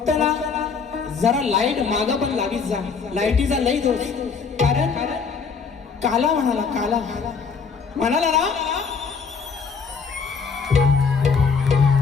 ना जरा लाईट माग पण लागीच जा, लाईटीचा लई दोष. कारण काला म्हणाला, काला म्हणाला ना,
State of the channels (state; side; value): quieter; right; 5.5 dB